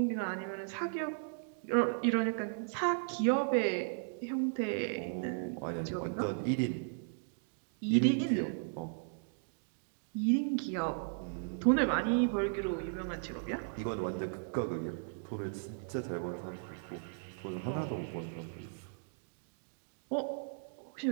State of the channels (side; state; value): left; silent; digital silence